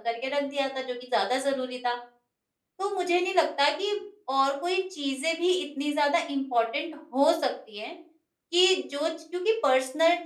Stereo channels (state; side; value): identical; both; correlation 1.00